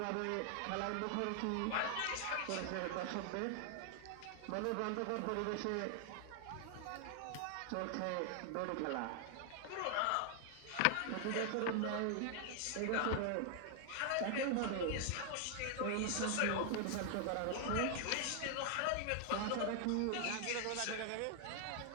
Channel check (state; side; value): different; both; correlation 0.00